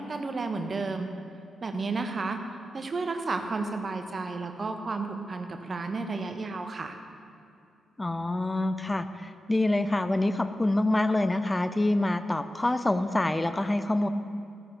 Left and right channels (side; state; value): both; normal; correlation 0.93